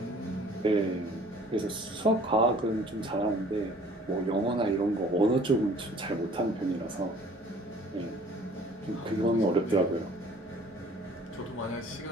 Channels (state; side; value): normal; both; correlation 0.52